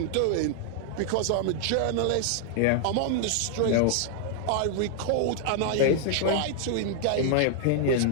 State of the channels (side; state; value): both; different; correlation 0.00